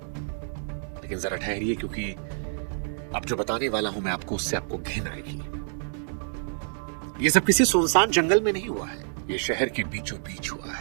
लेकिन जरा ठहरिए, क्योंकि अब जो बताने वाला हूं मैं आपको, उससे आपको घिन आएगी। यह सब किसी सुनसान जंगल में नहीं हुआ है, यह शहर के बीचों बीच हुआ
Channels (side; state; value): left; silent; digital silence